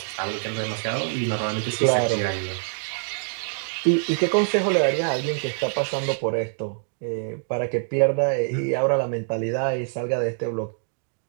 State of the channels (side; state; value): left; silent; digital silence